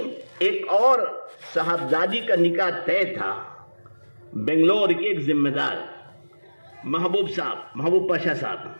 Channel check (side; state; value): both; inverted; correlation -1.00